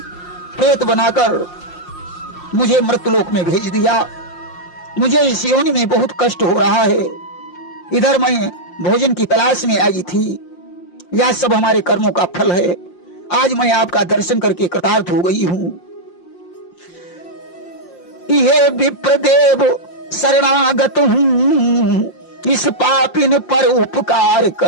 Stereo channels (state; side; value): late; right; 5.7 ms